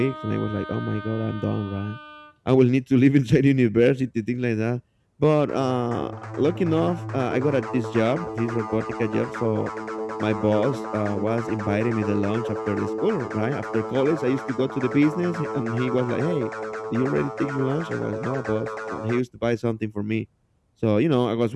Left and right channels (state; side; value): identical; both; correlation 1.00